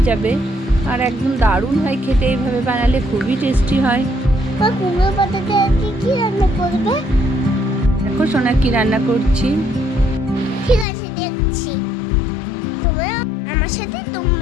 যাবে আর একদম দারুণ হয় খেতে। এইভাবে বানালে খুবই টেস্টি হয়। কুমড়ো পাতাতে কি রান্না করবে? দেখো সোনা কি রান্না করছি। ঠিক আছে, দেখছি। তোমরা আমার সাথে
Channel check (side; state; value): right; drops out; at 10.9 s